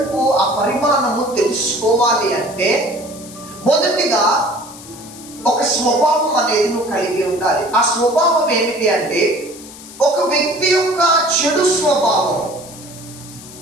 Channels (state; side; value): noise; left; hiss, 17 dB below the sound